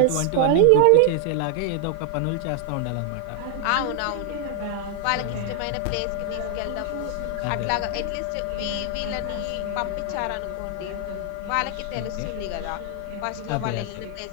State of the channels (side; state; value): both; different; correlation 0.00